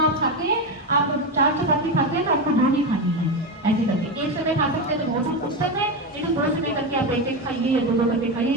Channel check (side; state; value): both; normal; correlation 0.14